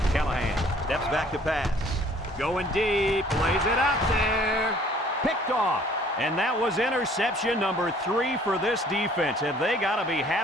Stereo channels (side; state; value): both; normal; correlation 0.56